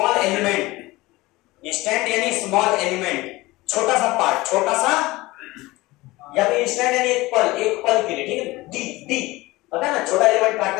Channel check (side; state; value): right; quieter; 20.3 dB